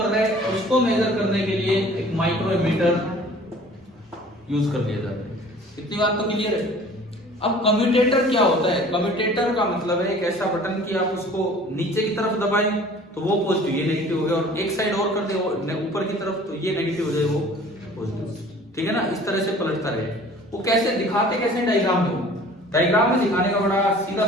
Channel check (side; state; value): both; normal; correlation 0.48